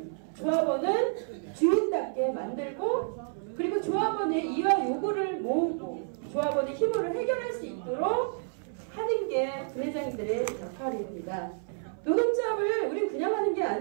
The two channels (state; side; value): silent; left; 58 dB below the other